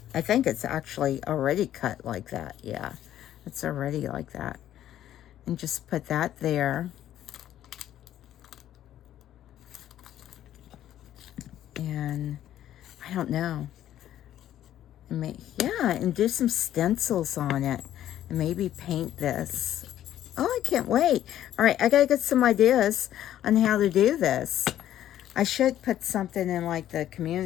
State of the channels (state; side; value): quieter; right; 11.9 dB